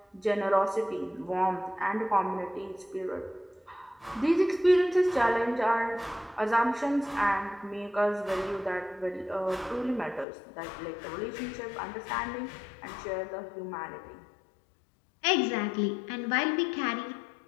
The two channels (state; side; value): drops out; right; at 10.2 s